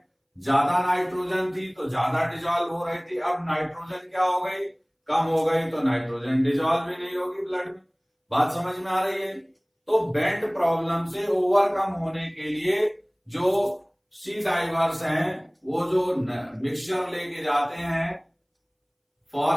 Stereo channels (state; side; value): identical; both; correlation 1.00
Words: ज्यादा नाइट्रोजन थी तो ज्यादा डिजॉल्व हो रही थी। अब नाइट्रोजन क्या हो गई, कम हो गई, तो नाइट्रोजन डिजॉल्व भी नहीं होगी ब्लड में। बात समझ में आ रही है। तो बेंड प्रॉब्लम से ओवरकम होने के लिए जो सी डाइवर्स हैं वो जो मिक्सचर लेके जाते हैं